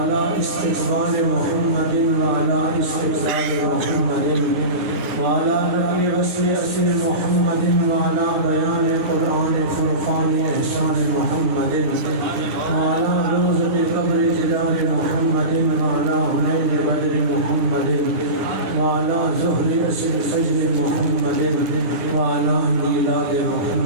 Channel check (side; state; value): left; late; 11 ms